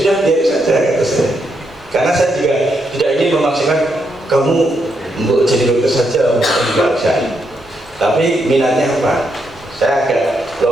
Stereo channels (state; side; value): normal; both; correlation 0.79